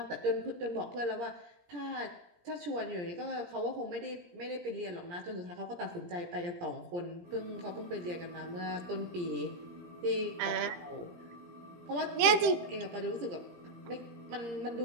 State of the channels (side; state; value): left; late; 18 ms